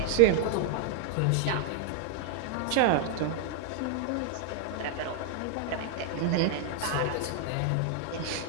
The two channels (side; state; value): both; different; correlation 0.00